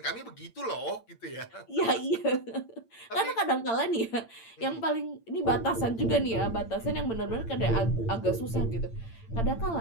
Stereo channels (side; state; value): right; late; 8.8 ms